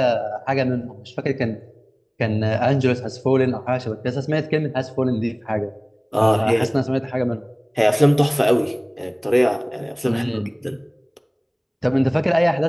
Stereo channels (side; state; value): both; identical; correlation 1.00